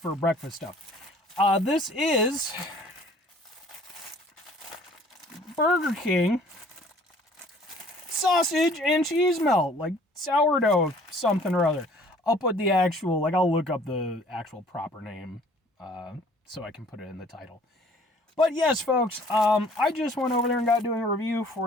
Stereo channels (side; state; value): both; normal; correlation 0.54